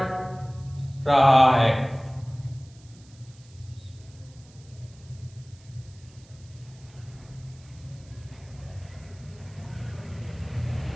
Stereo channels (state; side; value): noise; right; hiss, 26 dB below the sound